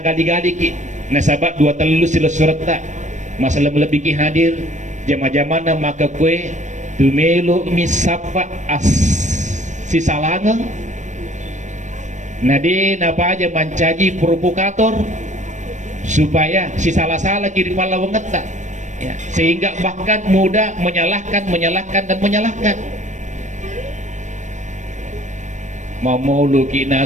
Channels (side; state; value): left; late; 0.35 ms